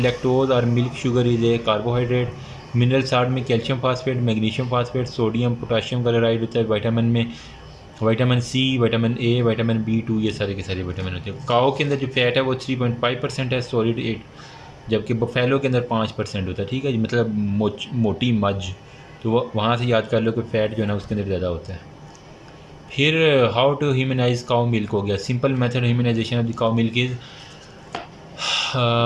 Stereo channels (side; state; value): both; identical; correlation 1.00